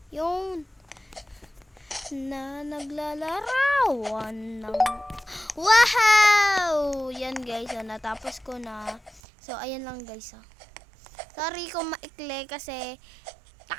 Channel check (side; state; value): left; drops out; at 9.2 s